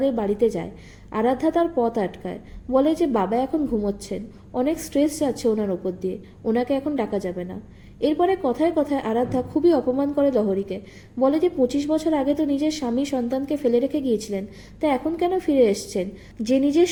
বাড়িতে যায়। আরাধ্যা তার পথ আটকায়, বলে যে বাবা এখন ঘুমোচ্ছেন, অনেক স্ট্রেস যাচ্ছে ওনার ওপর দিয়ে, ওনাকে এখন ডাকা যাবে না। এরপরে কথায় কথায় আরাধ্যা খুবই অপমান করে লহরীকে, বলে যে 25 বছর আগে তো নিজের স্বামী সন্তানকে ফেলে রেখে গিয়েছিলেন, তা এখন কেন ফিরে এসছেন? যে নিজের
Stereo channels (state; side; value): identical; both; correlation 1.00